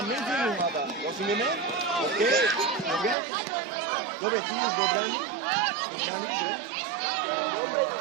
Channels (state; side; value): drops out; left; at 3.2 s